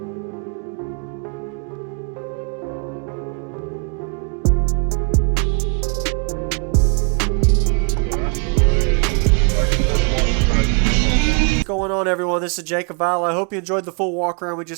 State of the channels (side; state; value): left; quieter; 36.1 dB